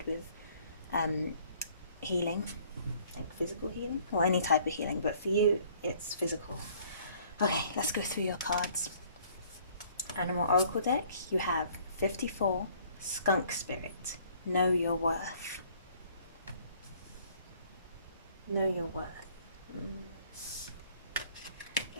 with healing, like physical healing, or any type of healing, but for you, it's physical. Okay, let's go through your cards. Animal Oracle deck, you have 54, Skunk Spirit, Know Your Worth. Know your worth.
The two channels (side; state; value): both; inverted; correlation -0.58